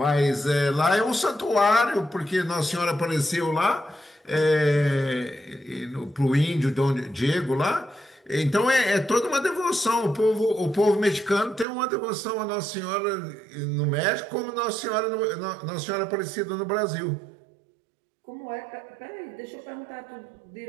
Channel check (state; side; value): drops out; left; at 11.7 s